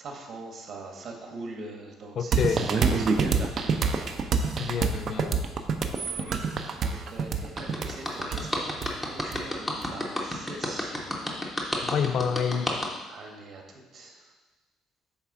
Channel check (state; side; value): normal; both; correlation 0.66